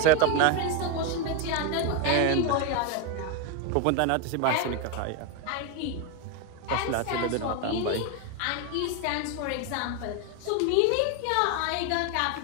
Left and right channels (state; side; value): different; both; correlation 0.02